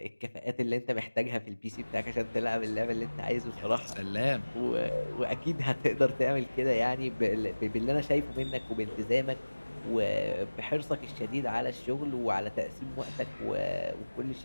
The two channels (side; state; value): both; inverted; correlation -1.00